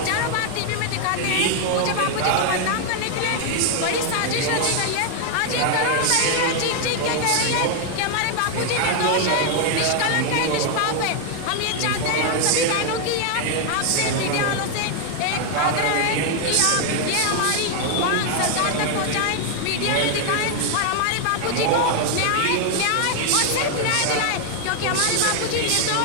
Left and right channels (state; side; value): different; both; correlation 0.00